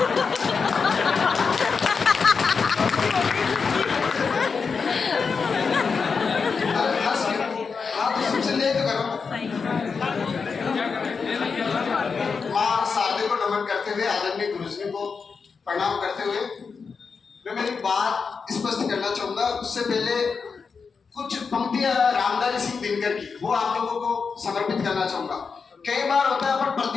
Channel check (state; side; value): quieter; right; 5.3 dB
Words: शुभ संध्या तो करो। माँ शारदे को नमन करते हुए, आदरणीय गुरुजी को प्रणाम करते हुए मैं मेरी बात स्पष्ट करना चाहूंगा। उससे पहले कुछ पंक्तियां रामधारी सिंह दिनकर की वो आप लोगों को समर्पित करना चाहूंगा। कई बार होता है अपन